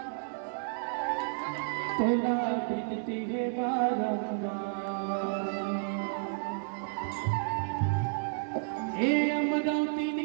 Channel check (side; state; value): left; silent; digital silence